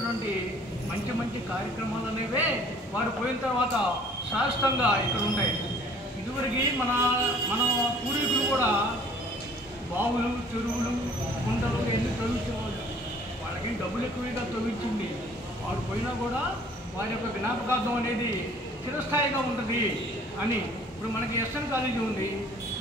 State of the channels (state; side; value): normal; both; correlation 0.54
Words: మంచి మంచి కార్యక్రమాలు అనేవే వారు పోయిన తర్వాత శాశ్వతంగా ఇక్కడ ఉంటాయి. ఇదివరకు మన పూర్వీకులు కూడా బావులు, చెరువులు, కుంటలు ఎన్ని తవ్వించేవాళ్ళు. వాళ్ళకి డబ్బులు ఎక్కువగా తవ్వించింది. వారు పోయినా కూడా వారి యొక్క జ్ఞాపకార్థం అనేది చిరస్థాయిగా ఉంటుంది అని. ఇప్పుడు మనకి ఎస్ఎన్ కాలేజీ ఉంది.